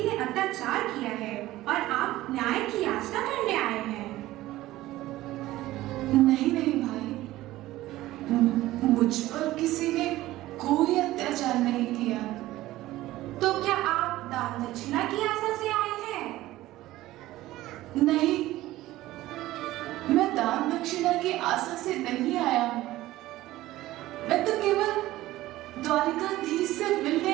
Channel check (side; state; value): left; quieter; 16.3 dB